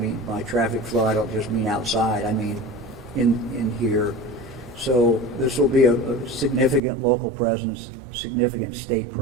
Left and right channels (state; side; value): drops out; left; at 6.8 s